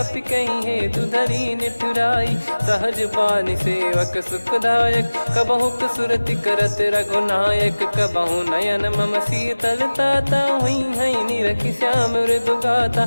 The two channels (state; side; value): inverted; both; correlation -1.00